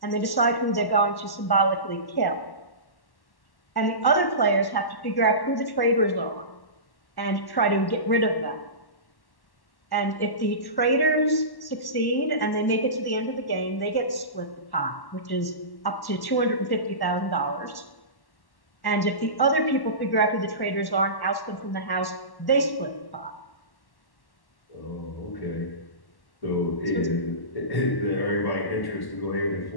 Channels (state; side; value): late; right; 1.1 ms